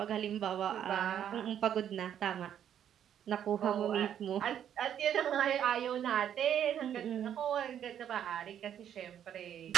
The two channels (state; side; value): quieter; left; 9.6 dB